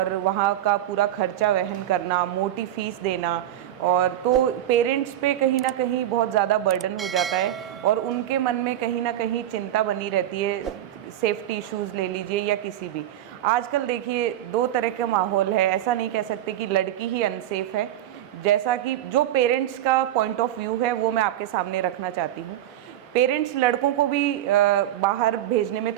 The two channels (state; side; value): quieter; left; 12.5 dB